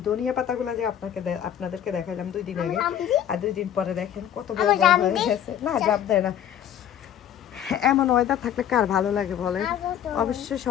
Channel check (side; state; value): right; quieter; 10.2 dB